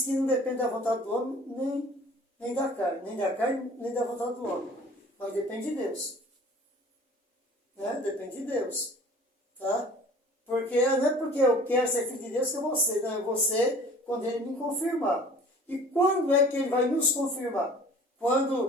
que não depende da vontade do homem, nem da carne, nem da vontade do homem, mas depende de Deus. Né? Depende de Deus. Tá? Porque não é porque eu quero ser filho de Deus que eu vou ser, não, eu vou ser quando Ele me confirmar. E quando é que Ele vai nos confirmar?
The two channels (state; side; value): normal; both; correlation 0.48